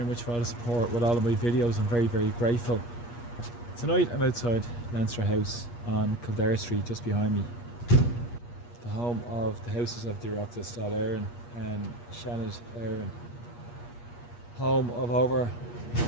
much for all the support with all of my videos. I'm very grateful. Tonight I'm outside Leinster House on Kildare Street, just behind me, the home of the houses of the Oireachtas Dáil Éireann and Shannon Éireann, home of over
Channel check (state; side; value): late; right; 8.4 ms